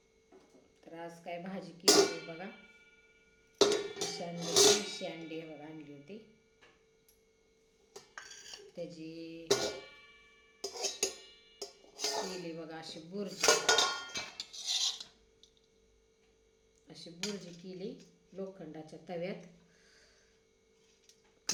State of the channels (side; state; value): both; identical; correlation 1.00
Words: तर आज काय भाजी केली होती बघा, देशी अंडी बघा आणली होती, त्याची केली बघा अशी बुर्जी केली लोखंडाच्या तव्यात.